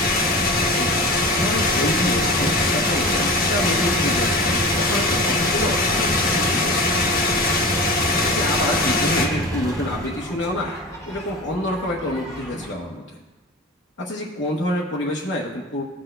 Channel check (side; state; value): both; normal; correlation 0.32